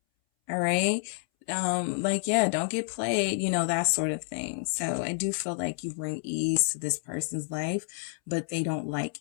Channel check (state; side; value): silent; right; 59 dB below the other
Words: All right. Like, yeah, don't get played, you know, that sort of thing. So I do feel like you bring ease to this person's life, but they don't like